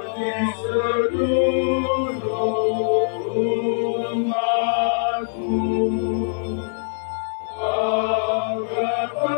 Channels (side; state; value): right; silent; 57 dB below the other